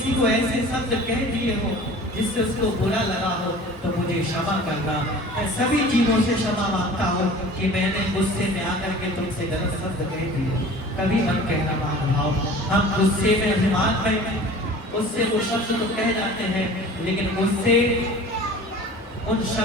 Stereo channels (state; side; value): normal; both; correlation 0.43